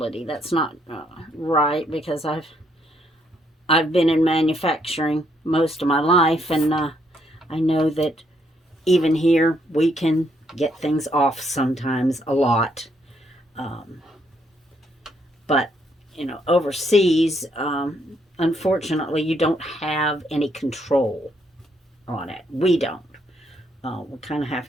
That's not right, because I've been in manufacturing most of my life, and I know that even here we can get things off sometimes a lot. But overseas, unfortunately, you don't have any control on it. We don't. We kind of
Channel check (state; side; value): normal; both; correlation 0.73